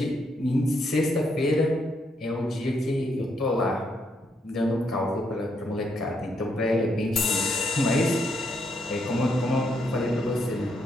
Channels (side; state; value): both; normal; correlation 0.76